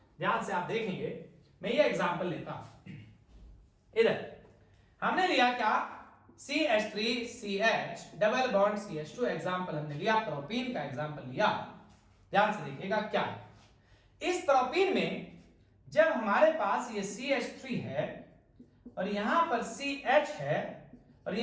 ध्यान से आप देखेंगे। मैं ये एग्जांपल लेता हूं। इधर हमने लिया क्या? CH3 CH double bond CH2 example हमने लिया, प्रोपीन का एग्जांपल लिया। ध्यान से देखिएगा क्या है। इस प्रोपीन में जब हमारे पास ये CH3 है और यहां पर CH है और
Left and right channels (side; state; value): both; identical; correlation 1.00